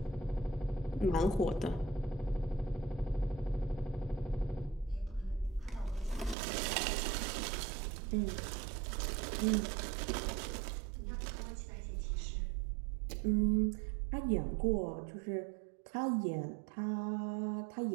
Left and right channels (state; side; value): drops out; left; at 6.4 s